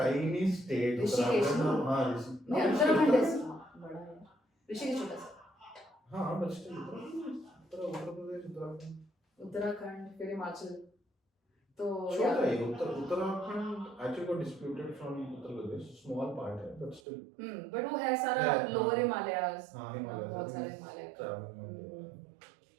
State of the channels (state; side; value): drops out; left; at 17.0 s